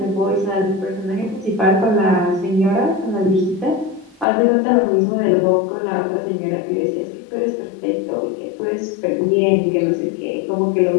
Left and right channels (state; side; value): drops out; right; at 4.2 s